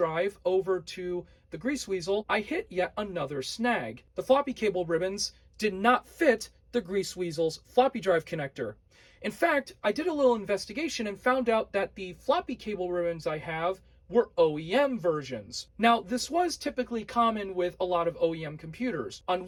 over to the grease weasel, I hit yet another snag. The floppy cable ribbons did not fit the grease weasel's floppy drive connector. In fact, I did a little investigation and found out that the floppy cable ribbons I have were OEM versions. Now, this was typically common with a lot of OEM computers. On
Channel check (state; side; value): identical; both; correlation 1.00